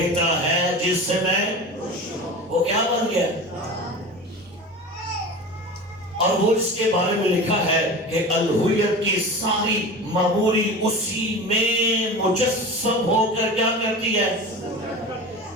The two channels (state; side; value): normal; both; correlation 0.32